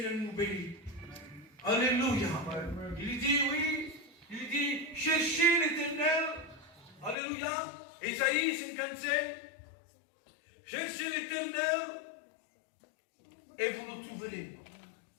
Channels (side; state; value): right; drops out; at 7.2 s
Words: nous bénit. Alléluia. Il dit oui, il dit cherchez l'Éternel. Alléluia. Ésaïe 55. Cherchez l'Éternel et vous le trouverez.